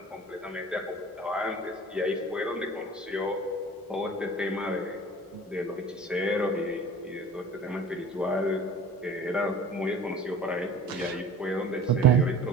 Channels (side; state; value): both; normal; correlation 0.43